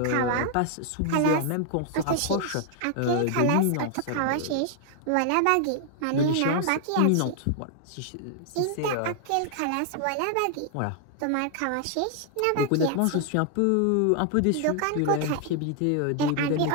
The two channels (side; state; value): both; different; correlation 0.00